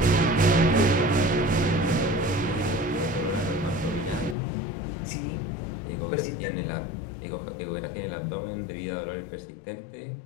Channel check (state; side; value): drops out; right; at 4.4 s